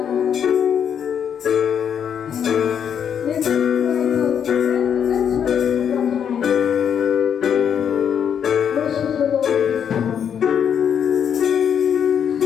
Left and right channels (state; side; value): quieter; right; 8.2 dB